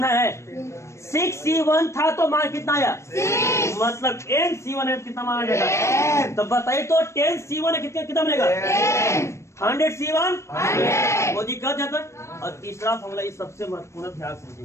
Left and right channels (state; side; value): late; right; 0.13 ms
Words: है 6C1 था तो मान कितना आया? 6। मतलब NC1 है कितना मान आ जाएगा? तो बताइए तो 10C1 है कितना बनेगा? 100C1 वो दिक्कत है तक। और तीसरा फॉर्मूला ये सबसे महत्वपूर्ण ध्यान